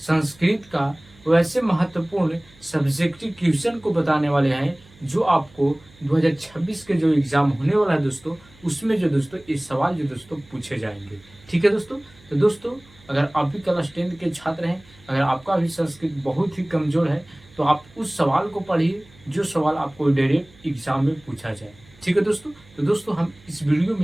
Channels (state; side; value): noise; right; hum, 26 dB below the sound